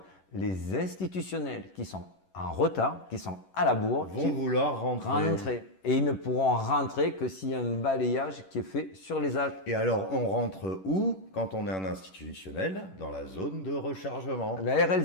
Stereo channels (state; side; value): late; right; 11 ms